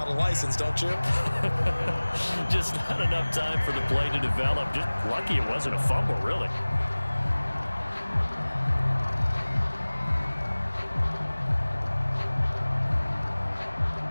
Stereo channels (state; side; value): inverted; both; correlation -1.00